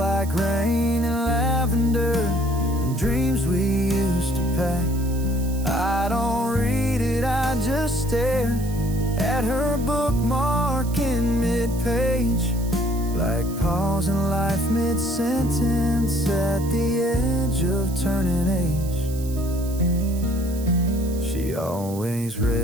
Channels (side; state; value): right; noise; hiss, 16 dB below the sound